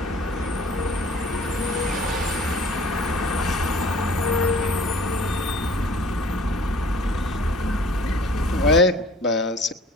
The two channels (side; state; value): both; normal; correlation 0.49